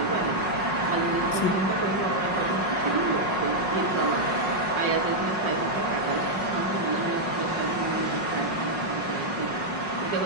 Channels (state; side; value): late; right; 5.5 ms